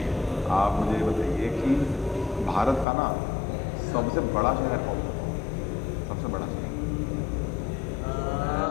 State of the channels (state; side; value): drops out; right; at 2.9 s